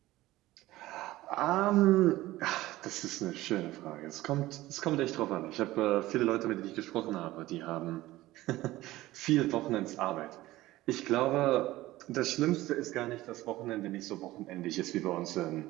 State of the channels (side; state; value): left; quieter; 17.0 dB